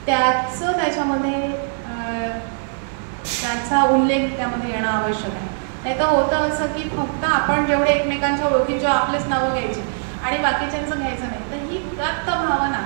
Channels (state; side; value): silent; left; 64 dB below the other